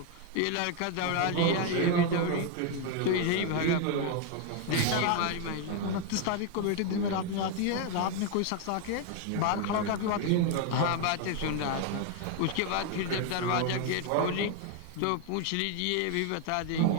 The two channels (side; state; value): both; different; correlation 0.01